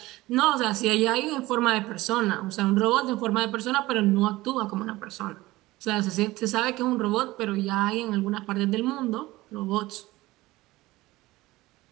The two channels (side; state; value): left; quieter; 18.9 dB